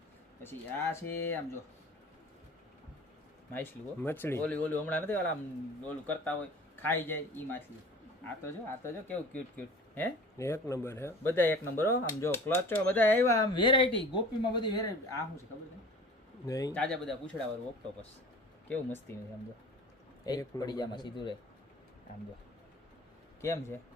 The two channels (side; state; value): both; normal; correlation 0.42